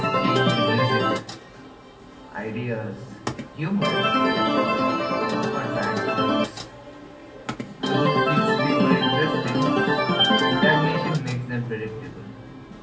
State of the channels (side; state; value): both; identical; correlation 1.00